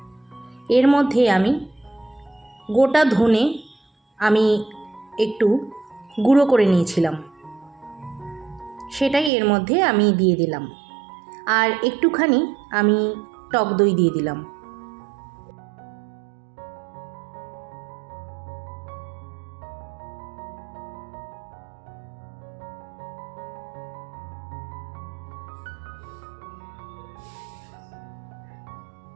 এর মধ্যে আমি গোটা ধনে আমি একটু গুঁড়ো করে নিয়েছিলাম, সেটাই এর মধ্যে আমি দিয়ে দিলাম। আর একটুখানি আমি টক দই দিয়ে দিলাম।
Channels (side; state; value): left; drops out; at 9.3 s